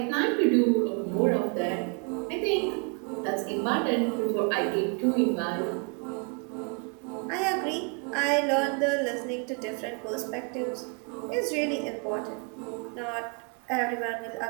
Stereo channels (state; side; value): quieter; left; 36.5 dB